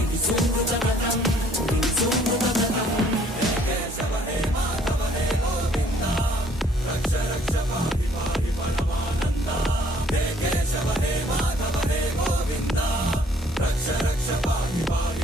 केशव हे माधव हे गोविन्दा रक्ष रक्ष पाहि पाहि परमानन्दा हे केशव हे माधव हे गोविन्दा रक्ष रक्ष पाहि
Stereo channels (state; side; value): normal; both; correlation 0.60